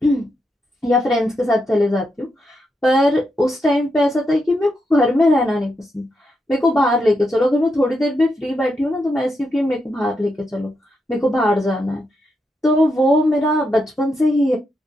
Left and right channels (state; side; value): normal; both; correlation 0.83